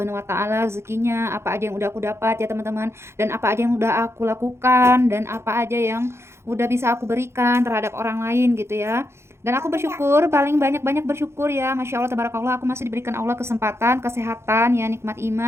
wa taala rezekinya, apa aja yang udah aku dapat ya teman-teman, dan apa aja yang udah aku lakukan, dan apa aja yang udah bisa aku berikan terhadap orang lain gitu ya. Dan aku bersyukur, paling banyak-banyak bersyukur ya, Masya Allah, tabarakallah, aku masih diberikan Allah kesempatan, kesehatan ya, nikmat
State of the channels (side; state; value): left; late; 0.13 ms